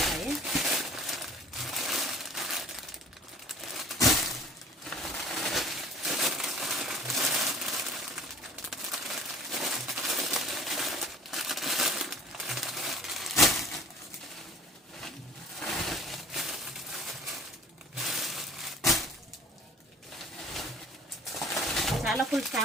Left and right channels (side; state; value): both; normal; correlation 0.48